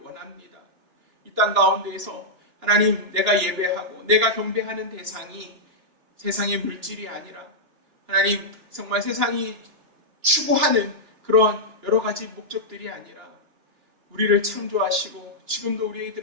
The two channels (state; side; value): late; left; 2.9 ms